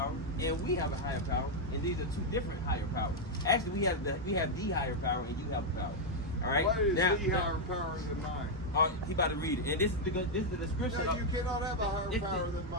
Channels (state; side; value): normal; both; correlation -0.01